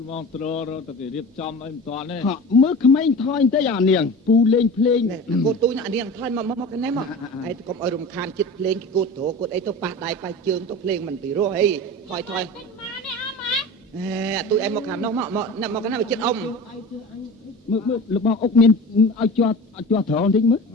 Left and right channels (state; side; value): normal; both; correlation 0.34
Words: ហ្មងត្ររទៅគេរៀបចំអីមិនតាន់ទេមើលក្មេងថយទៅអានាងពូលេងភ្លេងកូនទូញអានាងថយមកកណែមកហើយកុំឲ្យរំខានចិត្តភ្លេងគេគូតត្រគូតអីទៅប៉ះដៃប៉ះជើងទៅភ្លេងមិនពីរោះអីថយទូឯងមកខាងនោះមកកណែមកចិត្តអ៊ំមើលរបស់អុកមានឲ្យជាប់ត្រង់បន្តិចមើល